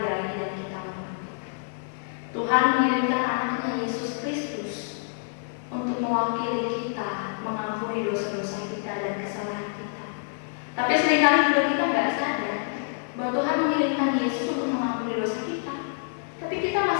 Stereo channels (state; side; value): silent; right; digital silence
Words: dan kita hormati. Tuhan mengirimkan anaknya Yesus Kristus untuk mewakili kita, mengampuni dosa-dosa kita dan kesalahan kita. Tapi seringkali juga kita nggak sadar bahwa Tuhan mengirimkan Yesus untuk mengampuni dosa kita. Tapi kita